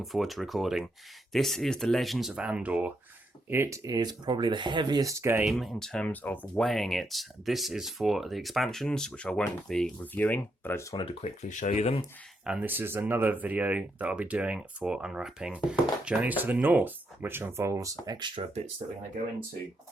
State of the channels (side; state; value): both; normal; correlation 0.80